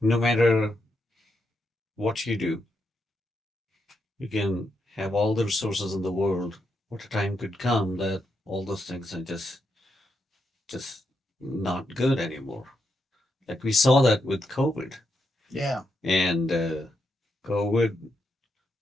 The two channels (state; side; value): normal; both; correlation 0.82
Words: no matter what you do, you can have all the resources in the world. What a time could come that all those things are just not good anymore. Like we saw that with COVID, Yeah, and COVID